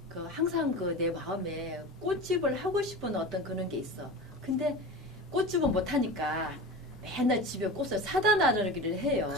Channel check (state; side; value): normal; both; correlation 0.30